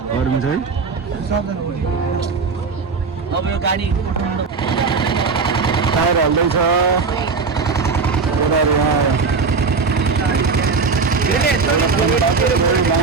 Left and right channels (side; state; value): left; quieter; 4.7 dB